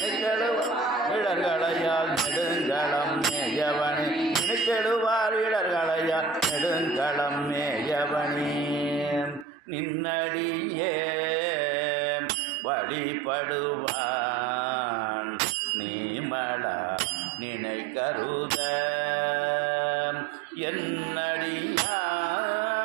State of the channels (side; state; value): left; drops out; at 9.5 s